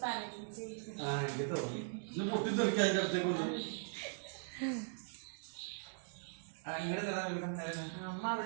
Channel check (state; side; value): silent; left; digital silence